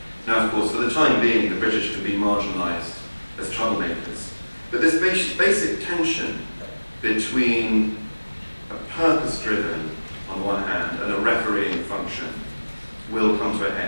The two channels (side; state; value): both; inverted; correlation -1.00